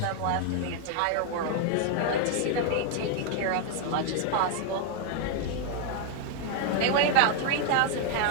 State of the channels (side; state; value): both; different; correlation 0.00